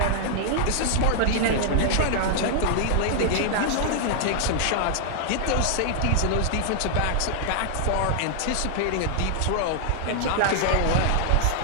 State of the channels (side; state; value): both; different; correlation -0.01